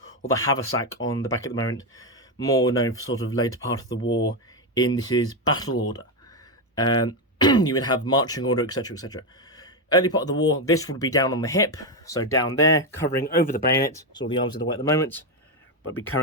or the haversack on the back at the moment, more known for sort of later part of the war in this is battle order. You would have marching order, etc, etc. Early part of the war, this would be down on the hip, so down there, covering over the bayonet. So all the arms are the way at the moment, but be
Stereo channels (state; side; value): normal; both; correlation 0.08